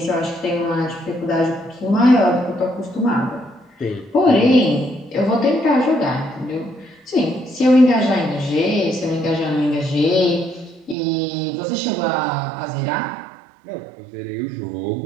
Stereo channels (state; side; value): drops out; left; at 11.0 s